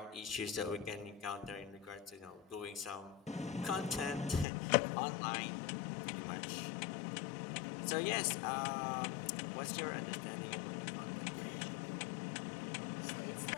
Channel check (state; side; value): drops out; right; at 4.5 s